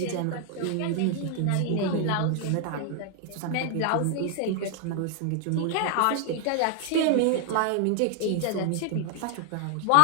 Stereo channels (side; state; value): both; different; correlation 0.00